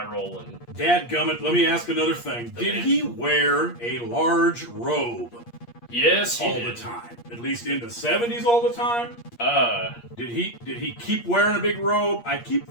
and Dadgummit, let me ask another thing. Did he wear a large robe? Yes, all the time. At least in the 70s all the time? Did he keep wearing a big robe? I keep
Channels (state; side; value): late; right; 8.5 ms